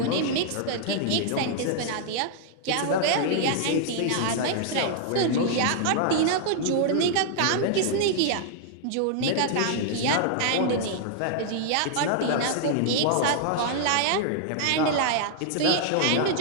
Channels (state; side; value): different; both; correlation -0.01